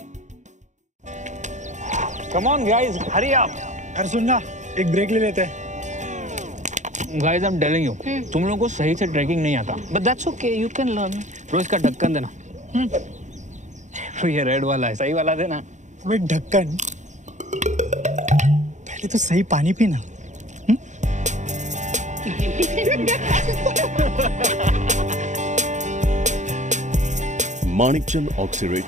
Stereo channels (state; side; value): late; left; 0.35 ms